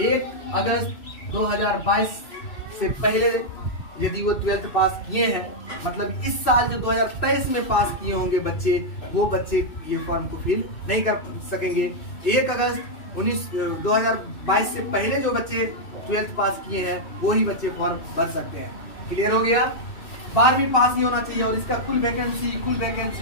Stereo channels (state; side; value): late; right; 2.6 ms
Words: अगस्त 2022 से पहले यदि वो 12th पास किए हैं, मतलब इस साल जो 2023 में पास किए होंगे बच्चे, वो बच्चे ये फॉर्म को फिल नहीं कर सकेंगे। 1 अगस्त 2022 से पहले जो बच्चे 12th पास किए हैं वो ही बच्चे फॉर्म भर सकते हैं। क्लियर हो गया? 12वीं पास ही होना चाहिए। और इसका कुल वैकेंसी